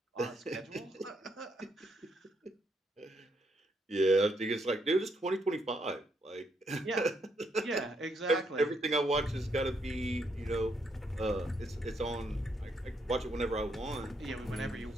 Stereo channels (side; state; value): both; normal; correlation 0.76